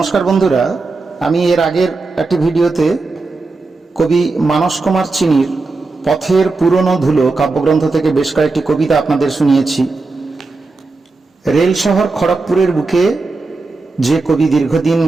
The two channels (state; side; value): quieter; left; 3.7 dB